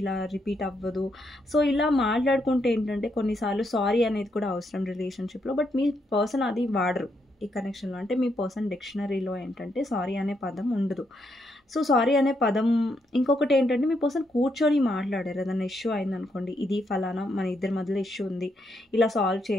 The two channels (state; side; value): normal; both; correlation 0.78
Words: ఇలా రిపీట్ అవ్వదు. సో ఇలా మాట్లాడుకుంటే ఏంటంటే, కొన్నిసార్లు సారీ అనేది కూడా అవసరం రిలేషన్షిప్లో. బట్ మీ పర్సన్ అది వాడరు ఈ కనెక్షన్లో. అంటే మీ పర్సన్ డిక్షనరీలో ఏంటంటే సారీ అనే పదం ఉండదు. సో సారీ అనే పదం, ఇంకొకటి ఏంటంటే, మీ పర్సన్ కూర్చొని మాట్లాడారు. ఏదైనా ఇష్యూ అయిందనుకోండి, ఇది ఫలానా మన ఇద్దరి మధ్యలో ఇష్యూ ఉంది, ఇలా సాల్వ్